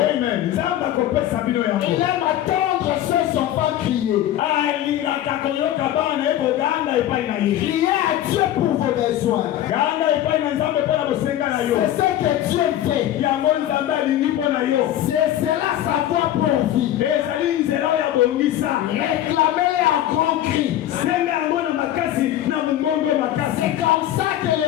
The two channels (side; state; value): right; quieter; 12.5 dB